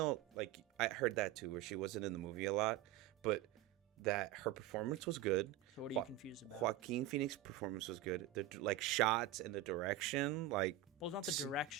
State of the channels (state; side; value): quieter; left; 12.0 dB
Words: like I heard that too, where she wasn't in the movie a lot, but that her performance was good. So what are you confused about? Joaquin Phoenix's performance was good. The shots and the direction, like. Well, it's not the